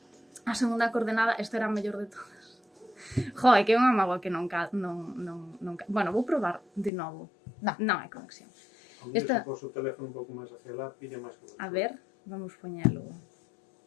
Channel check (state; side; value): drops out; right; at 6.9 s